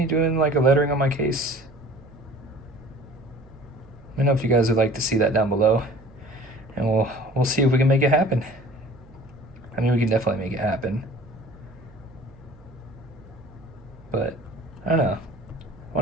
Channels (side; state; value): right; noise; hum, 24 dB below the sound